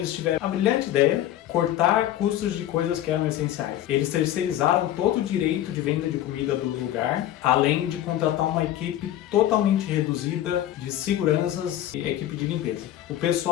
tiveram a brilhante ideia cortar custos de coisas que eram essenciais. Eles terceirizaram todo o direito de venda de comida do lugar, além de contratar uma equipe totalmente reduzida de seguranças e equipe de limpeza. O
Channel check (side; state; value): right; quieter; 12.7 dB